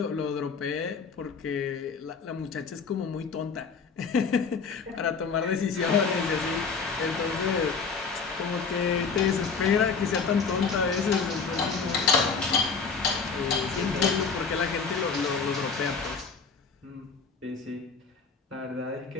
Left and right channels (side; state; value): right; quieter; 5.2 dB